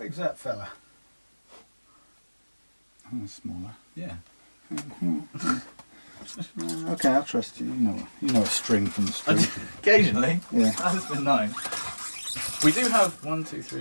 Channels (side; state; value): both; inverted; correlation -1.00